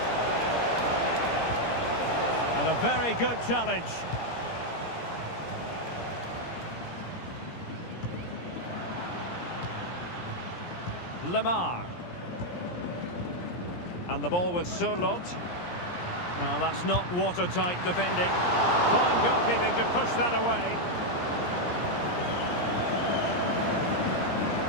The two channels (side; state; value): right; late; 17 ms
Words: a very good challenge. Lamar. And the ball with Surlot. Well, that's not watertight defending. Fine goalkeeping to push that away.